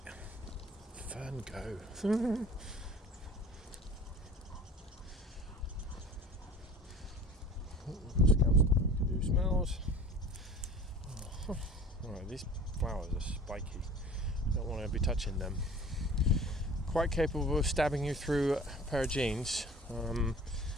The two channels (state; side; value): normal; both; correlation 0.43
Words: Fern go. Scout stopping to do smells. Oh. Alright, these flowers are spiky. Don't want to be touching them. Quite capable of stabbing you through a pair of jeans.